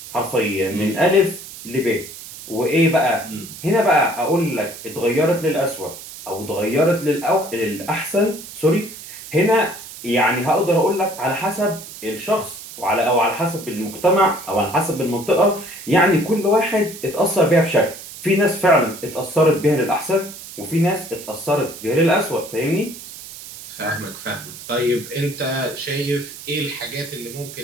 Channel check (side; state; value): right; noise; hiss, 14 dB below the sound